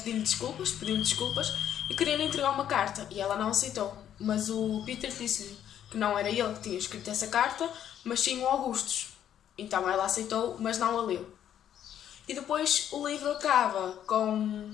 desculpas e queria-lhe entregar uma carta e ela não aceitou. Mas o Peter disse-lhe que não era ele que tinha escrito essa carta, mas sim o Augustus. Então ela aceitou, mas não a leu. E depois o livro acaba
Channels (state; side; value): quieter; right; 10.2 dB